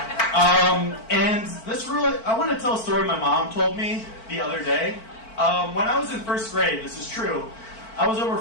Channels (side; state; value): right; late; 4.5 ms